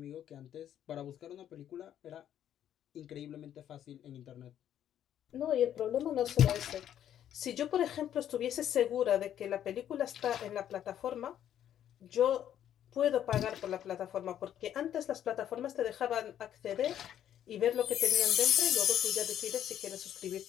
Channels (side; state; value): right; quieter; 10.5 dB